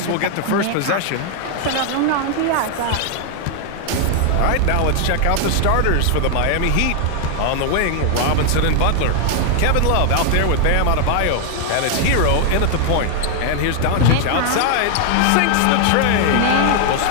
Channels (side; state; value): both; different; correlation 0.00